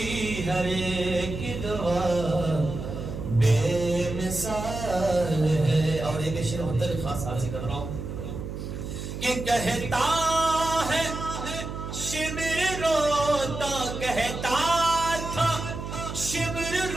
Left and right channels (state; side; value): noise; right; hum, 7 dB below the sound